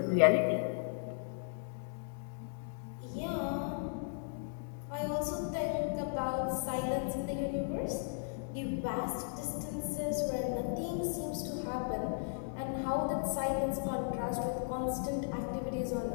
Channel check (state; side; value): silent; right; digital silence